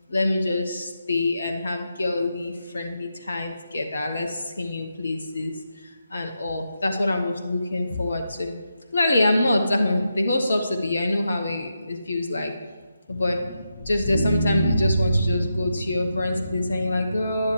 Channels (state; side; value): inverted; both; correlation -0.86